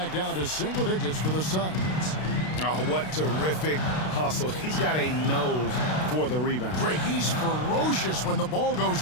down to single digits for the Suns. Oh, what terrific hustle. He's got a nose for the rebound. Greg, he's ferocious when the ball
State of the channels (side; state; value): right; late; 32 ms